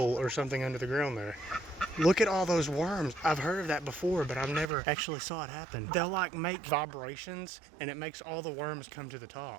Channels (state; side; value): drops out; left; at 4.7 s